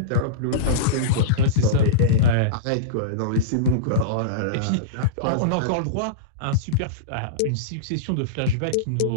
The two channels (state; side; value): different; both; correlation -0.05